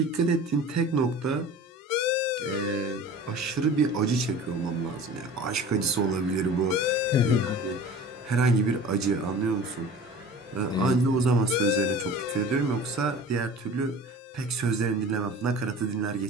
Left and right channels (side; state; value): both; normal; correlation 0.40